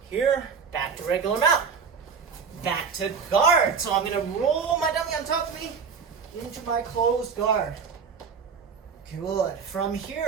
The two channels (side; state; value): left; quieter; 6.0 dB